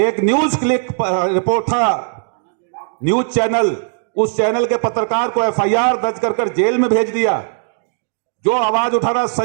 न्यूज क्लिक रिपोर्ट था, न्यूज चैनल, उस चैनल के पत्रकार को एफआईआर दर्ज कर जेल में भेज दिया। जो आवाज उठा रहा,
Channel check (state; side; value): silent; left; digital silence